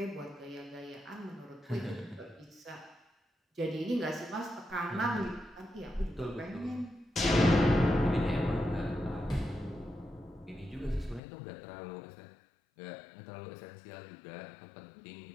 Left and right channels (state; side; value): drops out; right; at 11.2 s